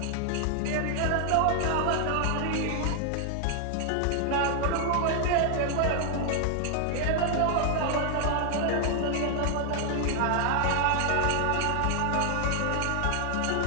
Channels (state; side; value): different; both; correlation 0.00